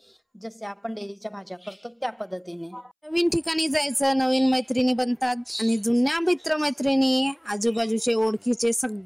जसे आपण डेलीच्या भाज्या करतो त्या पद्धतीने। नवीन ठिकाणी जायचं, नवीन मैत्रिणी बनतात, आणि जुन्या मित्रमैत्रिणी आजूबाजूचे ओळखीचे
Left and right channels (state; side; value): identical; both; correlation 1.00